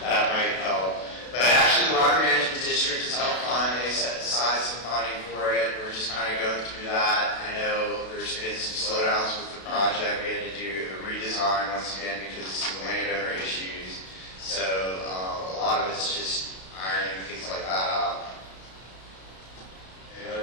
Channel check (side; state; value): right; late; 32 ms